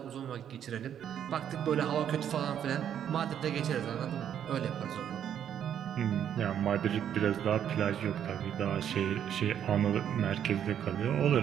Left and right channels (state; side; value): quieter; left; 9.4 dB